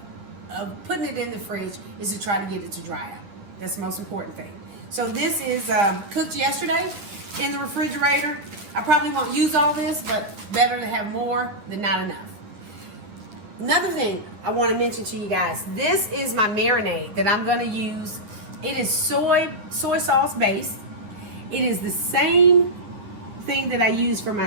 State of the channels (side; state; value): left; late; 10 ms